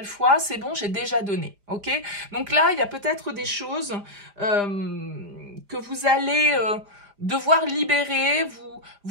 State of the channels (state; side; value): late; left; 5.0 ms